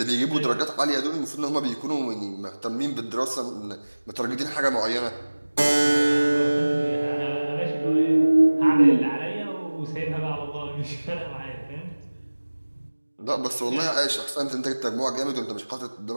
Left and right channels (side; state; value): both; inverted; correlation -1.00